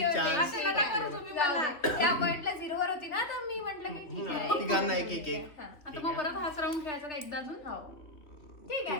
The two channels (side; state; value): right; late; 3.0 ms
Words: ठेवते. चान्स असे नका करू तुम्ही मला. त्या पॉइंटला 0 वर होती ना, तर मी म्हटलं की ठीक आहे. तिघांना एक एक एक. हा. आता मग परत हाच राऊंड खेळायचा का एकदा अजून? हो. ठीक